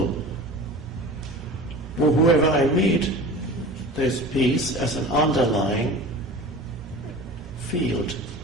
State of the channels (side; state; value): both; normal; correlation 0.36